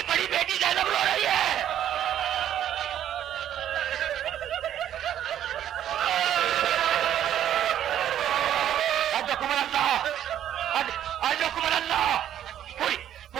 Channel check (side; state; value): left; quieter; 10.9 dB